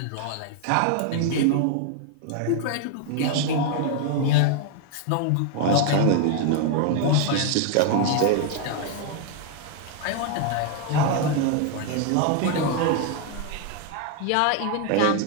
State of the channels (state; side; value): different; both; correlation 0.00